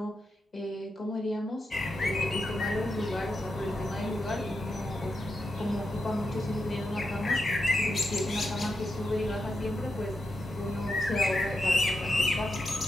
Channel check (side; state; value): both; normal; correlation 0.86